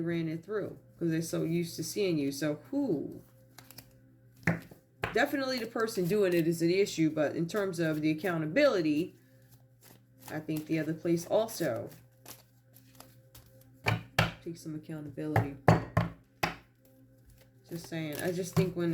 it through because they're so used to seeing you. So who? Definitely the person doing it is an issue, but in terms of the accountability, I think the other place also takes some accountability. Just saying. I just think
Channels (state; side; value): identical; both; correlation 1.00